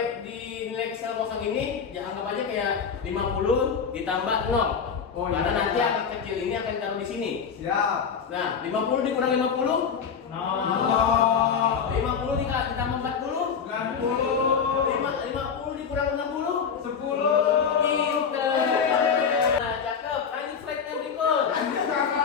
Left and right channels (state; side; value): quieter; right; 6.5 dB